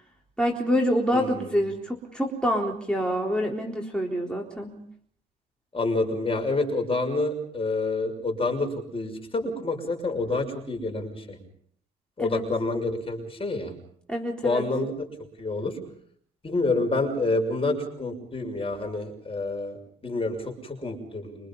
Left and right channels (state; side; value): normal; both; correlation 0.68